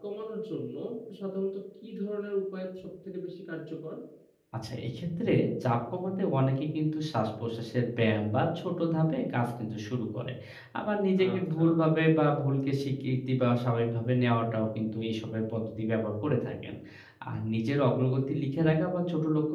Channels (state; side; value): identical; both; correlation 1.00